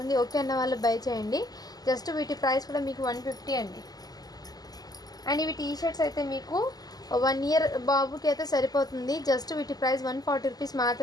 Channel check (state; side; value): late; right; 0.19 ms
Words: ఓకే అన్న వాళ్ళు బై చేయండి. జస్ట్ వీటి ప్రైస్ కూడా మీకు 150 అండి. అండ్ ఇవి టీ షర్ట్స్ అయితే మీకు 1 ఇయర్ బాబుకి అయితే సరిపోతుంది. జస్ట్ వీటి ప్రైస్ 140 రూపీస్